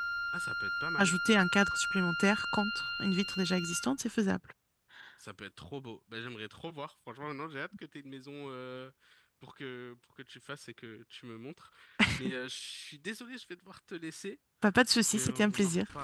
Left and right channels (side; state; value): both; identical; correlation 1.00